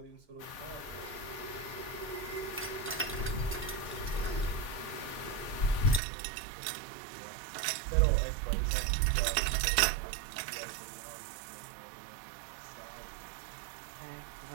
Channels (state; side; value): drops out; left; at 6.0 s